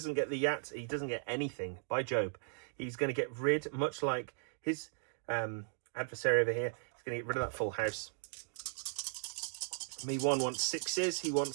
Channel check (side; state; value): left; silent; digital silence